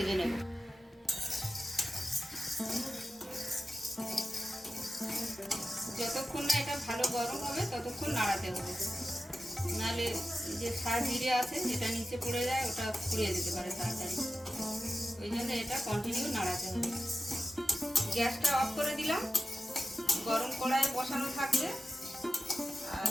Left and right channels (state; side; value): normal; both; correlation 0.93